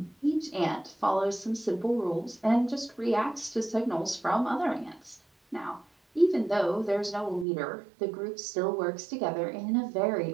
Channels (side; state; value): left; drops out; at 7.5 s